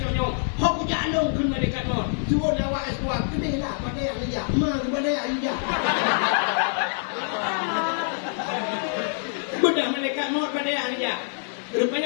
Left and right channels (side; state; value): right; silent; digital silence